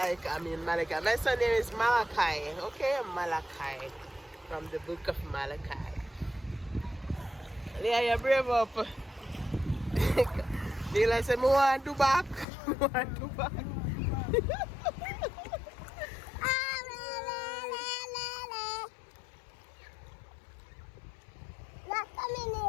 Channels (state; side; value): drops out; right; at 12.5 s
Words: mean Malachi. My son name is Malachi. Okay, Malachi. From the book of Malachi. Leah, you brave up. Neela said, I want to do back.